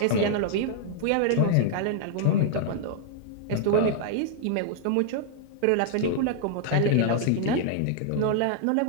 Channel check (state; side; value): different; both; correlation -0.01